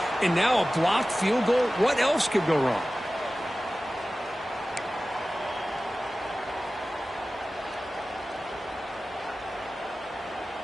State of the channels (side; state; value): both; normal; correlation 0.96